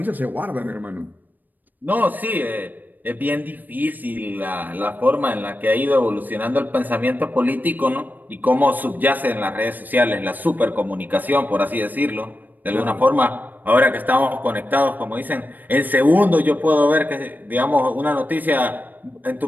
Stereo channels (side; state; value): left; late; 0.087 ms